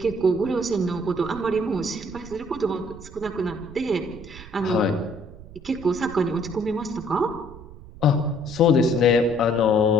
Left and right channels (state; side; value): noise; right; rumble, 17 dB below the sound